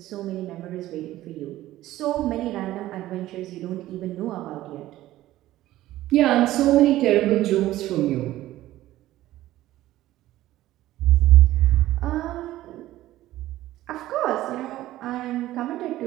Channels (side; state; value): left; quieter; 15.2 dB